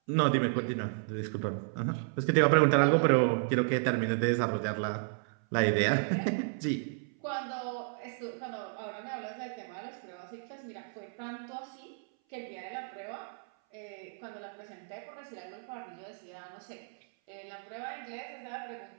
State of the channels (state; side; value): silent; left; 56 dB below the other